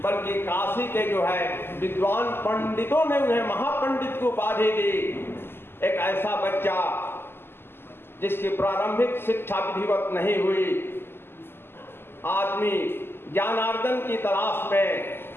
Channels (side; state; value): right; late; 0.11 ms